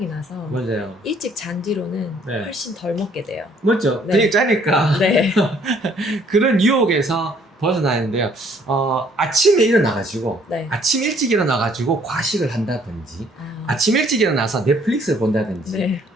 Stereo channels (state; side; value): normal; both; correlation 0.62